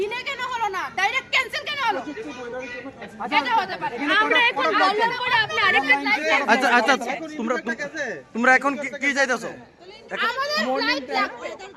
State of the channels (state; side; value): identical; both; correlation 1.00